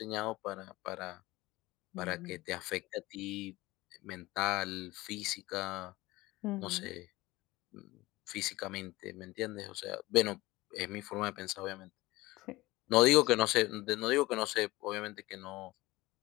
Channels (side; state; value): right; quieter; 19.7 dB